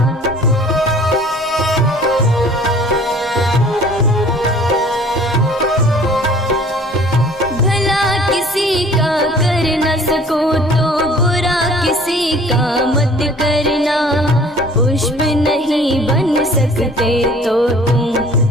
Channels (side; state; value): both; normal; correlation 0.51